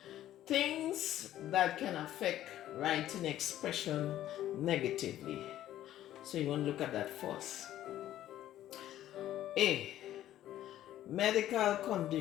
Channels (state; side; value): quieter; right; 12.8 dB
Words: things that can affect writing expression negatively. So you want to look at that first. A, medical